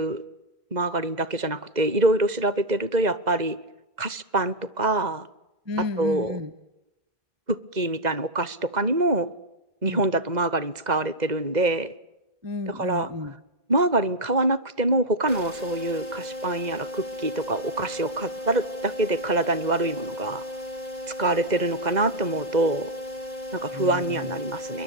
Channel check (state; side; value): late; left; 2.0 ms